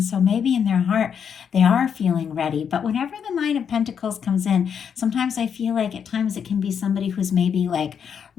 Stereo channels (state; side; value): quieter; right; 7.5 dB